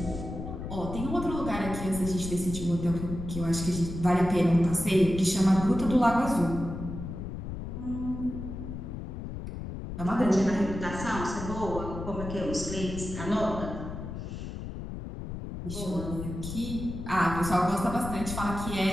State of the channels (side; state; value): left; noise; rumble, 7 dB below the sound